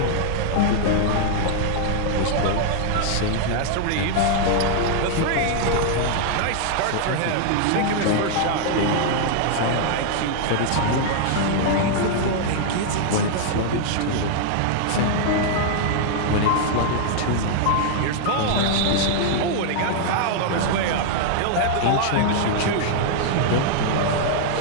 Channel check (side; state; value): both; different; correlation 0.00